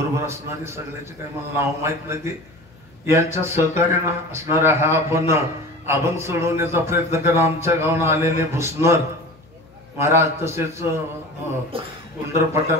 असणारी सगळ्याचे काही मला नाव माहित नाही, यांच्या सहकार्यानं असणारा हा आपण अभंग सोडवण्याचा प्रयत्न करा. आमच्या गावानं आलेले भुसनर महाराज, तसेच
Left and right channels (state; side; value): noise; left; hum, 28 dB below the sound